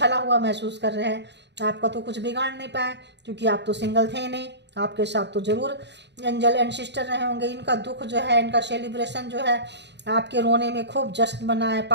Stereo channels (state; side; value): late; left; 0.50 ms